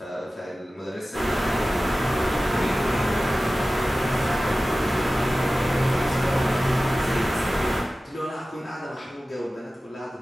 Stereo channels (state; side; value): normal; both; correlation 0.96